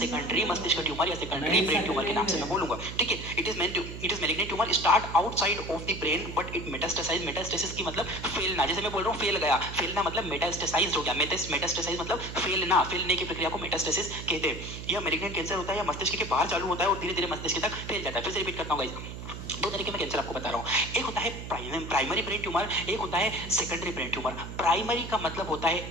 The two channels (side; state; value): right; noise; hum, 9 dB below the sound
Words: मस्तिष्क ट्यूमर या सेकेंडरी ब्रेन ट्यूमर के नाम से मैं बोलूंगा, ठीक है। It is malignant tumour start outside of the brain but it metastasize. Metastasis की मतलब फैलना, जैसे मैं बोल रहा हूँ फेल गया, फैलना मतलब मेटास्टेसाइज हो गया, मेटास्टेसाइज मतलब फैलना, फैलने की प्रक्रिया को मेटास्टेसिस कहते हैं। यह मेलिग्नेंट कैंसर होता है या मस्तिष्क के बाहर चालू होता है और धीरे धीरे मस्तिष्क तक फैल जाता है। फिर से रिपीट करता हूँ गाइस, दो तरीके में कैंसर आपको बता रहा हूँ, एक होता है प्राइमरी ब्रेन ट्यूमर, एक होता है सेकेंडरी ब्रेन ट्यूमर। प्राइमरी का मतलब होता